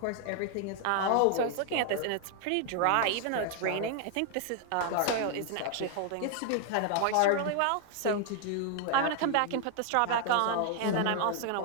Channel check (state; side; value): different; both; correlation 0.00